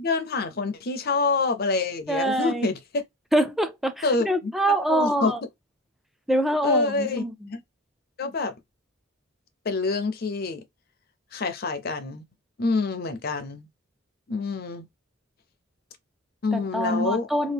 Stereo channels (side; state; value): both; normal; correlation 0.34